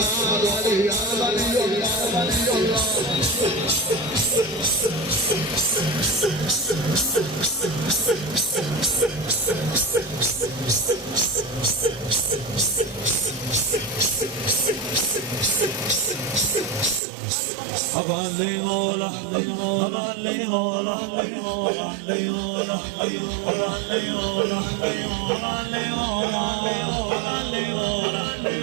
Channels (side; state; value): left; drops out; at 17.0 s